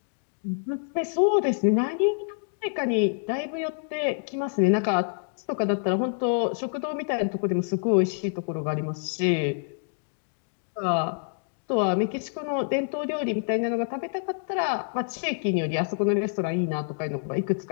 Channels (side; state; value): right; silent; digital silence